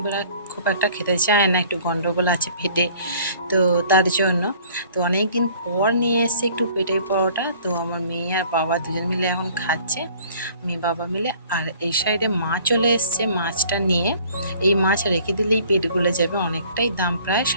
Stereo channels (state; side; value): inverted; both; correlation -0.53